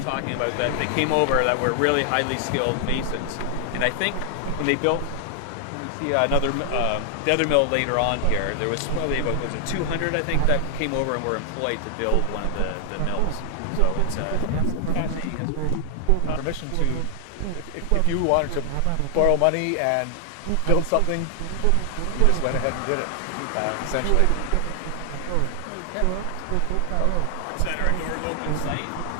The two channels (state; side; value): different; both; correlation 0.00